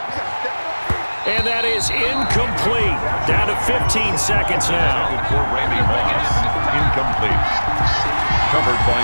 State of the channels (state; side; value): inverted; both; correlation -1.00